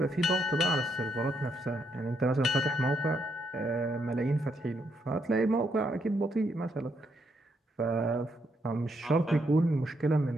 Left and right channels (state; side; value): normal; both; correlation 0.77